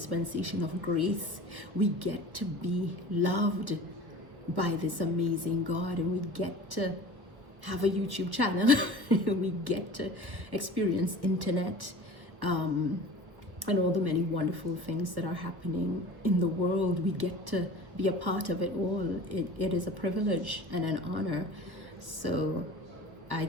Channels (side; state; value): left; late; 1.3 ms